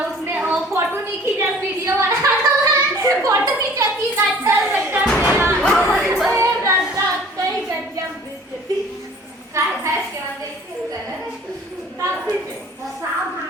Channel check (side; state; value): both; normal; correlation 0.50